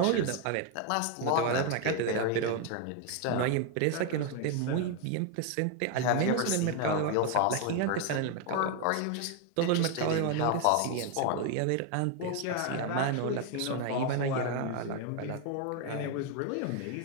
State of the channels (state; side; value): different; both; correlation 0.01